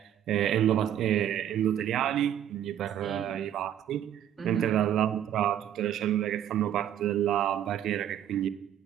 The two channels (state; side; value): quieter; left; 10.6 dB